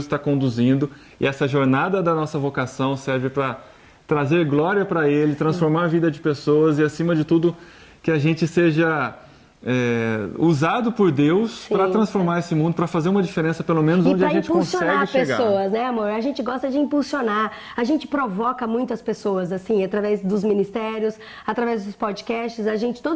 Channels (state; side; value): identical; both; correlation 1.00